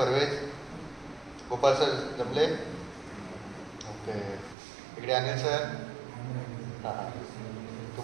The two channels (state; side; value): drops out; left; at 4.5 s